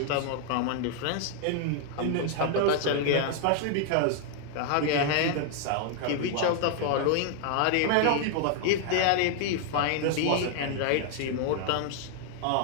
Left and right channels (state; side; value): different; both; correlation 0.00